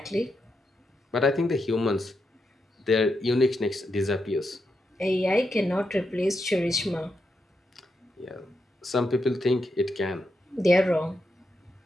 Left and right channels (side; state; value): both; normal; correlation 0.84